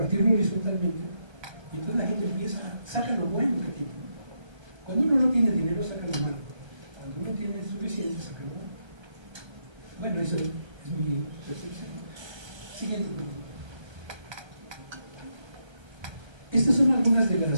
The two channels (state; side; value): late; left; 1.2 ms